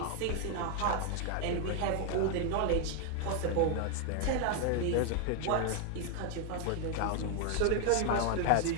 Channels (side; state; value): both; different; correlation 0.00